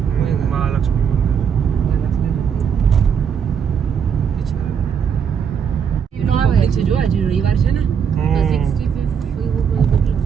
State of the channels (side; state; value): left; quieter; 7.3 dB